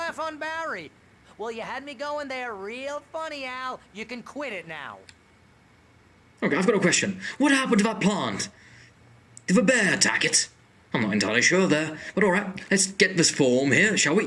on Barry. Well, you had me going there real funny, Al. You can quit it now. Okay, I've got a question. What happened to that plant? Did the bear attack it? I'm not entirely sure there. But alright, let's get this form here, shall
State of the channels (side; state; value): both; identical; correlation 1.00